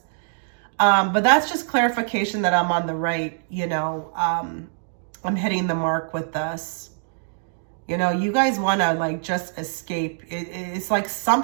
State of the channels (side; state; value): left; silent; digital silence